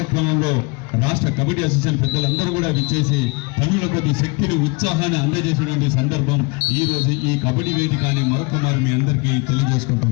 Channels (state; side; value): quieter; right; 29.0 dB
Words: రాష్ట్ర కబడ్డీ అసోసియేషన్ పెద్దలందరూ కూడా విచ్చేసి తమిళ కొద్ది శక్తిని ఉత్సాహాన్ని అందజేసినటువంటి సందర్భం ఈ రోజు ఈ కబడ్డీ వేదిక అని మరొకమారు మీ అందరికీ